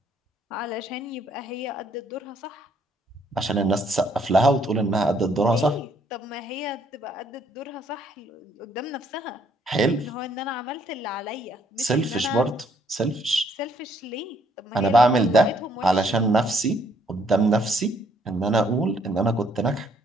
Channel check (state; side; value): normal; both; correlation 0.67